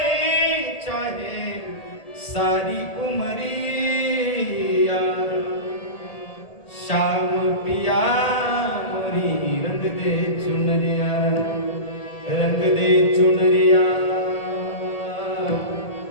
चाहे सारी उमरिया, शाम पिया मोरी रंग दे चुनरिया, रंग दे चुनरिया,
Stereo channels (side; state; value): right; late; 1.8 ms